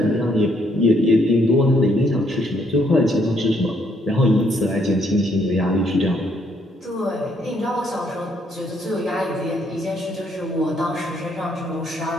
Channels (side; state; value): both; normal; correlation 0.70